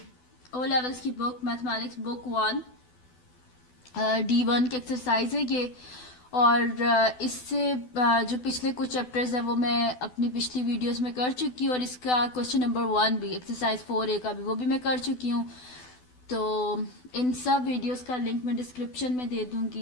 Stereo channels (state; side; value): late; right; 12 ms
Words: ओ लेवल्स की बुक मैथमेटिक्स बुक 1 D1 की एक्सरसाइज है ये। और इससे जो पिछले कुछ चैप्टर्स हैं वो मैं अपनी पिछली वीडियोस में कर चुकी हूँ, और इसका क्वेश्चन नंबर 1 भी एक्सरसाइज 4A का भी वो भी मैं कर चुकी हूँ। तो इन सब वीडियोस का लिंक मैं डिस्क्रिप्शन में दे